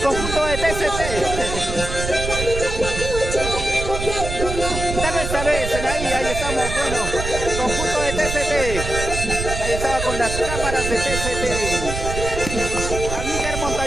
de TCT. Tal vez, ahí estamos, bueno, conjunto de TCT. Ahí estaba con las cámaras de TCT. Amílcar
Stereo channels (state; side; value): noise; right; rumble, 5 dB below the sound